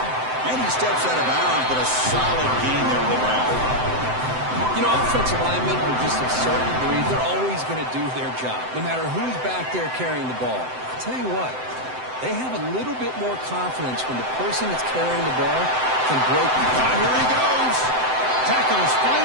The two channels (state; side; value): late; left; 7.8 ms